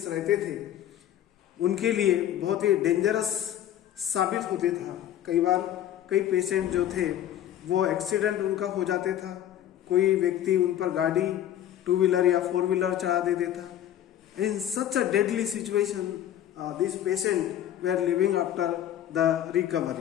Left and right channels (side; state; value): right; quieter; 11.5 dB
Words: रहते थे, उनके लिए बहुत ही डेंजरस साबित होते था। कई बार कई पेशेंट जो थे वो एक्सीडेंट उनका हो जाते था, कोई व्यक्ति उन पर गाड़ी 2 व्हीलर या 4 व्हीलर चढ़ा देते था। In such a deadly situation this patient were living after the